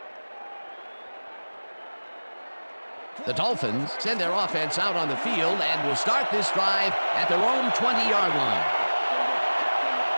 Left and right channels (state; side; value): inverted; both; correlation -1.00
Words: The Dolphins send their offense out on the field and will start this drive at their own 20-yard line.